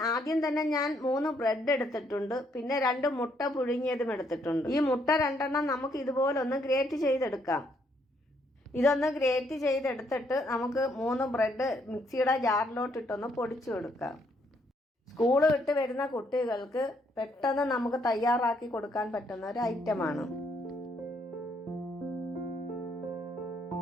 ആദ്യം തന്നെ ഞാൻ 3 ബ്രെഡ് എടുത്തിട്ടുണ്ട്. പിന്നെ 2 മുട്ട പുഴുങ്ങിയതും എടുത്തിട്ടുണ്ട്. ഈ മുട്ട 2 നമുക്ക് ഇതുപോലെ ഒന്ന് ഗ്രേറ്റ് ചെയ്തെടുക്കാം. ഇതൊന്ന് ഗ്രേറ്റ് ചെയ്തെടുത്തിട്ട് നമുക്ക് 3 ബ്രെഡ് മിക്സിയുടെ ജാറിലോട്ടിട്ടൊന്ന് പൊടിച്ചു കൊടുക്കാം. സ്കൂള് വിട്ട് വരുന്ന കുട്ടികൾക്ക് പെട്ടെന്ന് നമുക്ക് തയ്യാറാക്കി കൊടുക്കാൻ പറ്റുന്ന ഒരു ഐറ്റമാണ്.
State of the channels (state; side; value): normal; both; correlation 0.71